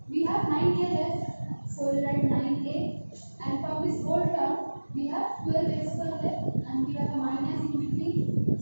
we have 9a left. So we write 9a and from this whole term we have 12x square left and we have a minus in between.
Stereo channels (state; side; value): inverted; both; correlation -1.00